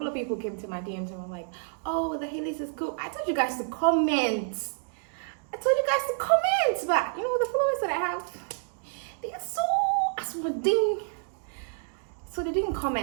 of people came to my DMs and were like, oh, the Hillies is cool. I told you guys to comment. But you know, the followers that I have, they are so aswading. So they didn't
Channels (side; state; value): left; silent; 59 dB below the other